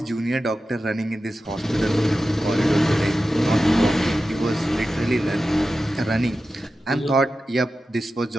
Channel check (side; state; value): both; normal; correlation 0.93